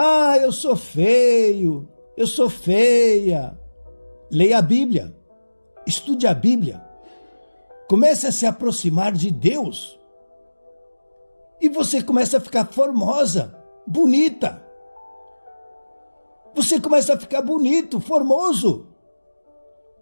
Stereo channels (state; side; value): inverted; both; correlation -1.00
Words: eu sou feio, eu sou feia. Leia a Bíblia, estude a Bíblia, comece a se aproximar de Deus e você começa a ficar formosa, bonita. Você começa a ficar bonito, formoso.